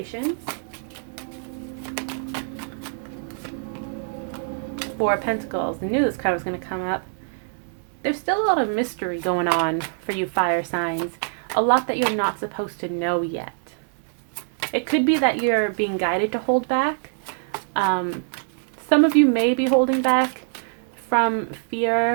Four of Pentacles. I knew this card was going to come up. There's still a lot of mystery going on for you fire signs. A lot that you're not supposed to know yet. It could be that you're being guided to hold back. Some of you may be holding back from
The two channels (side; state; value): left; silent; digital silence